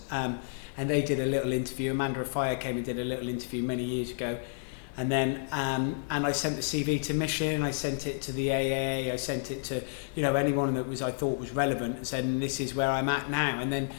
And they did a little interview. Amanda Rafaya came and did a little interview many years ago. And then and I sent the CV to Michelin, I sent it to the AA, I sent it to anyone that I thought was relevant, and said, this is where I'm at now. And then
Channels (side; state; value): right; silent; 58 dB below the other